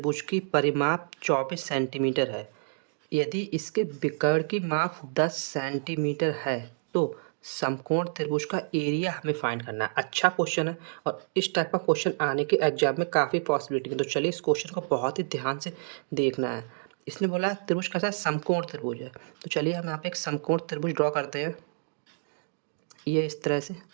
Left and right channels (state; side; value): silent; left; digital silence